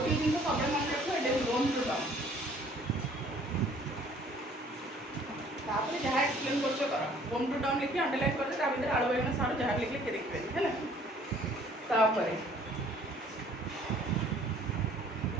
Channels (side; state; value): both; normal; correlation 0.57